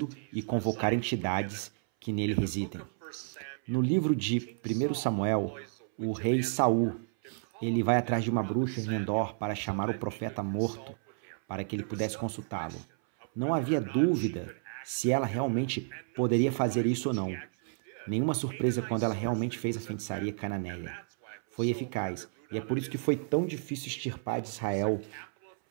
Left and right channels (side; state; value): left; silent; 57 dB below the other